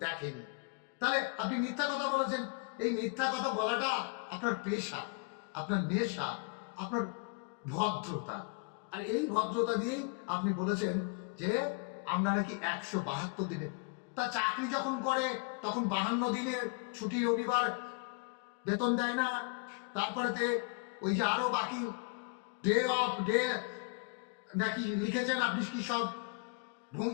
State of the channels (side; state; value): right; quieter; 32.8 dB